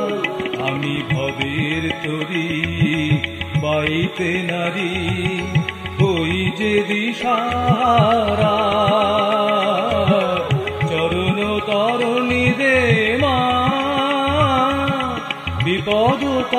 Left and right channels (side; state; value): both; identical; correlation 1.00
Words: আমি ভবের তরি বাইতে নারী, ওই যে দিশাহারা। চরণ তরণী দে মা, বিপদ